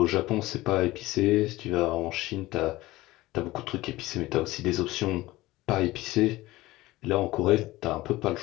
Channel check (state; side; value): quieter; right; 18.4 dB